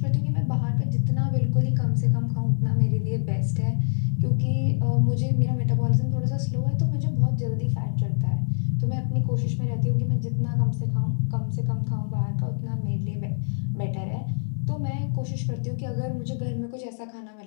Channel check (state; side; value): silent; right; 62 dB below the other